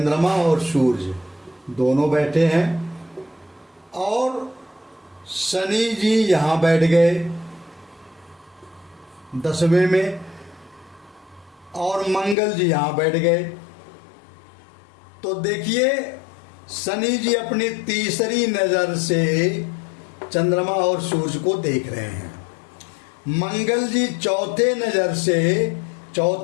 और सूर्य दोनों बैठे हैं और शनि जी यहाँ बैठ गए 10वें में और मंगल जी यहाँ बैठ गए। तो देखिए, शनि जी अपनी तीसरी नज़र से चंद्रमा और सूर्य को देख रहे हैं। मंगल जी चौथे नज़र से,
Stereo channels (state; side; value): drops out; right; at 12.4 s